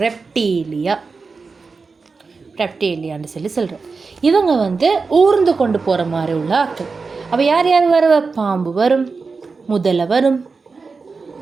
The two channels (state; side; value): quieter; left; 4.5 dB